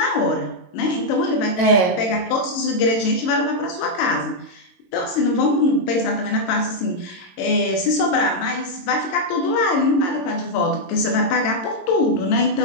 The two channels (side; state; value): right; late; 22 ms